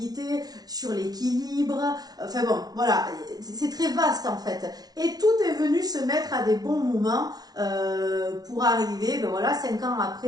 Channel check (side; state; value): left; late; 0.19 ms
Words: sur l'équilibre. Enfin bon, voilà, c'est très vaste en fait. Et tout est venu se mettre à des bons moments pour arriver, ben voilà, 5 ans